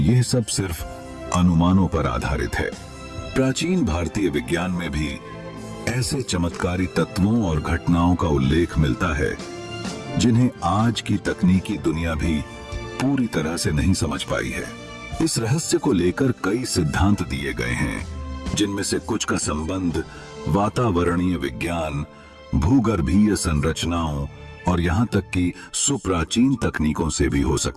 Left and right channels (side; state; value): both; identical; correlation 1.00